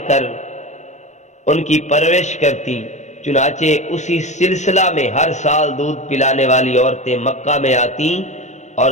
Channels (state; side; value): late; right; 0.34 ms